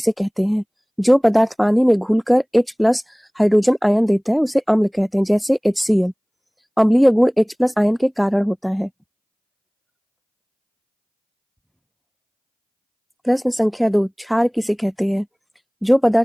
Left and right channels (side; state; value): both; identical; correlation 1.00